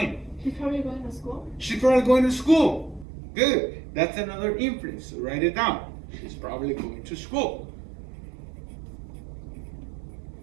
She's probably going to school. She's probably going to school. Good. That's another inference. So write it down. She's probably going to school.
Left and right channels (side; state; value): left; drops out; at 3.1 s